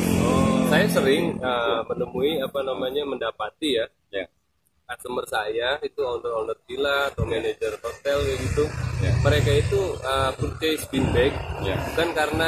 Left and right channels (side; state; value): both; identical; correlation 1.00